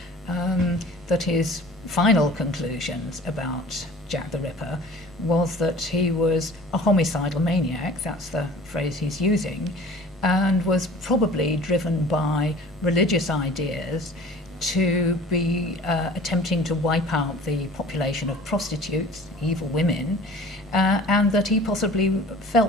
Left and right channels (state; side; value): normal; both; correlation 0.45